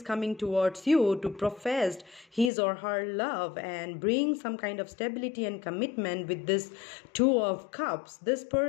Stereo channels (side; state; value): right; drops out; at 2.5 s